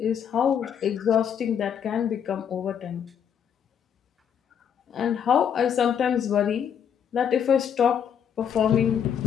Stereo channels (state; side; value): quieter; right; 8.3 dB